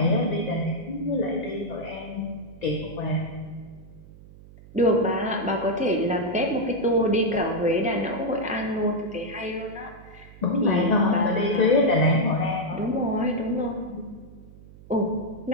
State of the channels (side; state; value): right; noise; hum, 20 dB below the sound